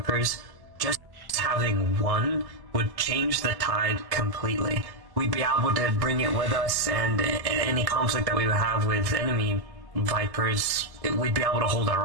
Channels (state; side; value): late; left; 1.1 ms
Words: just having one would change the tide completely. We'd be able to bring it with us, and any conflict that we would have with enemy Vipers, we'd be able to hold